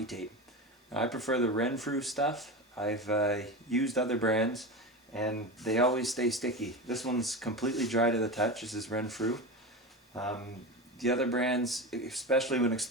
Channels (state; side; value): normal; both; correlation 0.24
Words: tape. Now, I prefer the Renfrew stuff. I've used other brands and they always stay sticky. This one's completely dry to the touch. This is Renfrew. The other brands, especially when